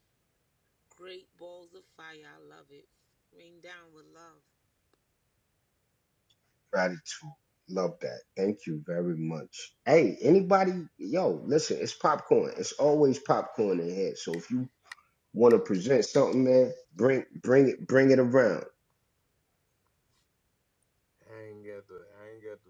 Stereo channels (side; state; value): both; identical; correlation 1.00